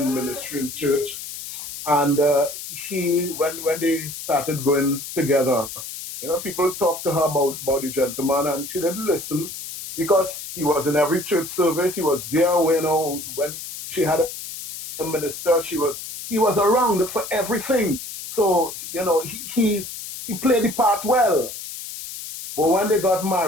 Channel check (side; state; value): left; noise; hiss, 10 dB below the sound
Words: ministry in church. And when they started going together, people talked to her about the gentleman, and she didn't listen because he was in every church service. He was there when she had a minister. He was around for everything. So he played the part well. But when they got